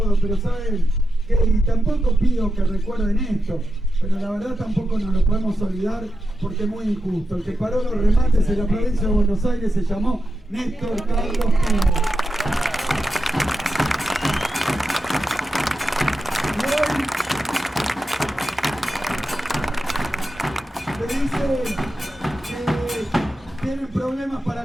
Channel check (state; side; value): normal; both; correlation 0.89